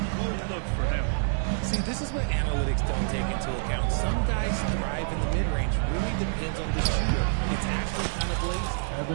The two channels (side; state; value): left; silent; digital silence